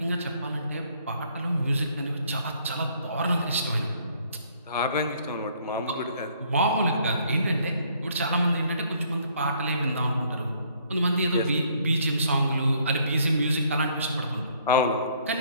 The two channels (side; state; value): both; inverted; correlation -0.63